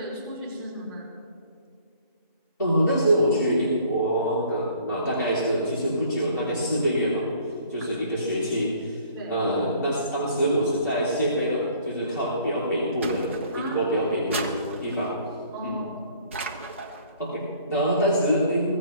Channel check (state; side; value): inverted; both; correlation -0.56